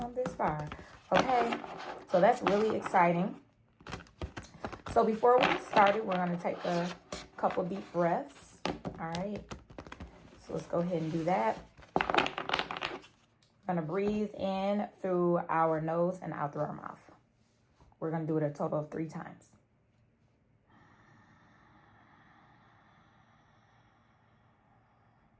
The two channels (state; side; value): identical; both; correlation 1.00